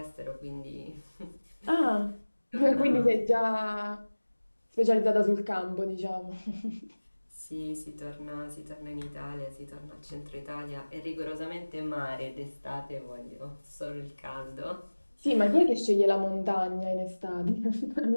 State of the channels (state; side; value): inverted; both; correlation -1.00